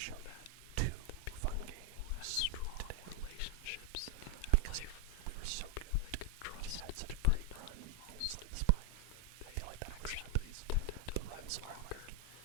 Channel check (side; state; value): both; different; correlation 0.01